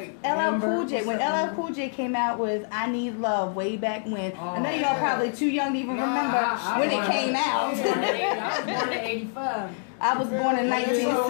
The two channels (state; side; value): silent; right; 61 dB below the other